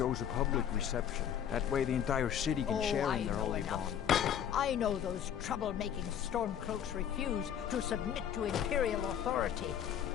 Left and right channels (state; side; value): quieter; right; 9.3 dB